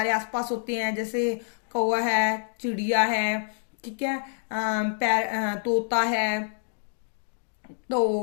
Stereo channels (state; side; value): silent; right; digital silence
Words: आसपास होते हैं, जैसे कौवा है, चिड़िया है, ठीक है, तोता है, तो